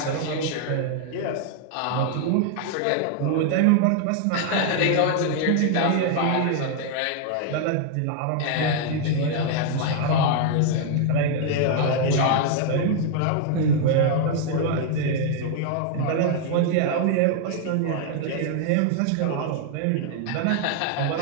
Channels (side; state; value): both; different; correlation 0.00